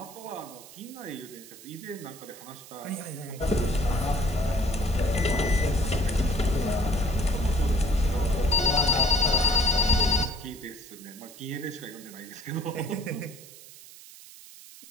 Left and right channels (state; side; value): noise; right; hiss, 18 dB below the sound